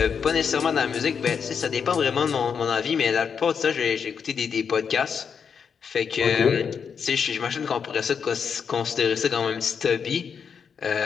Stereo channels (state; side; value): quieter; right; 6.6 dB